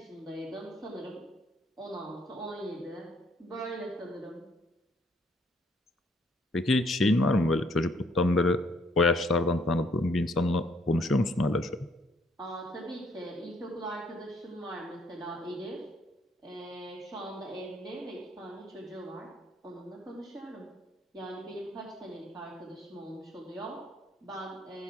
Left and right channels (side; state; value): both; normal; correlation 0.67